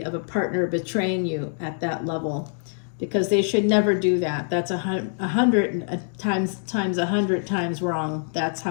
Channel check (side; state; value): right; silent; digital silence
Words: of a partner betraying you at that level, because they should never do that. That's 100 times wrong. That's